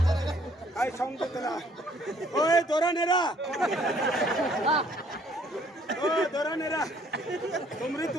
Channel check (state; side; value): normal; both; correlation 0.62